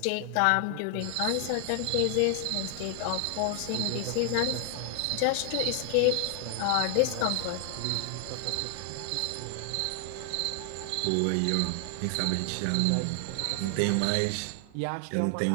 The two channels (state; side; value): different; both; correlation 0.00